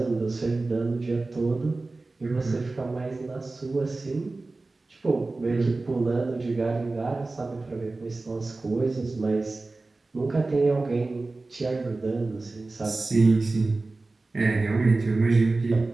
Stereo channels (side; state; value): left; quieter; 3.4 dB